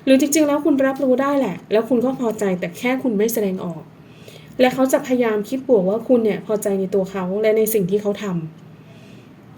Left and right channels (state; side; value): identical; both; correlation 1.00